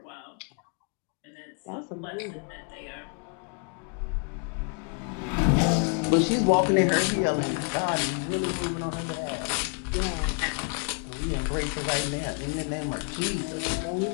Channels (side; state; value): right; quieter; 37.3 dB